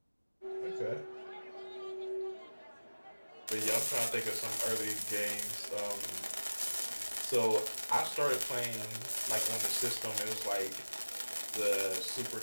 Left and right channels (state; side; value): inverted; both; correlation -1.00